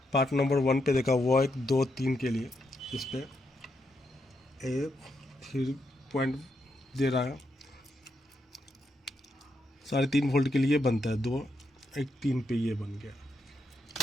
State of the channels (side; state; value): both; normal; correlation 0.81